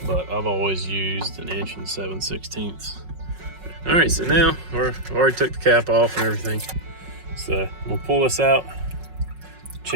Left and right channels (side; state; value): left; late; 5.4 ms